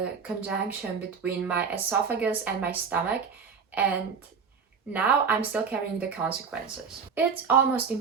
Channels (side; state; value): left; quieter; 6.0 dB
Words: conjunction between my esophagus and my stomach, and now I'm still carrying the consequences. It's almost